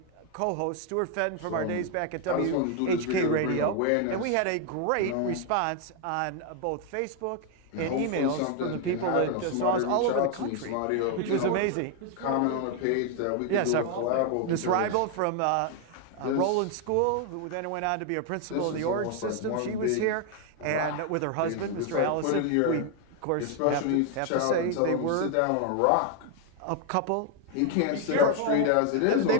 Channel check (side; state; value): both; different; correlation 0.01